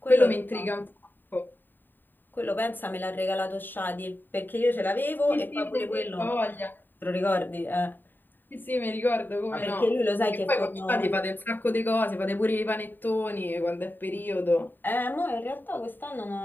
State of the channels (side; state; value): right; late; 0.092 ms